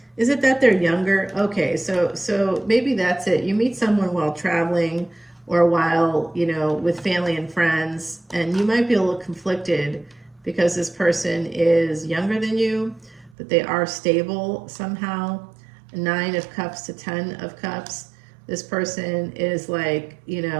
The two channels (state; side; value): drops out; left; at 13.4 s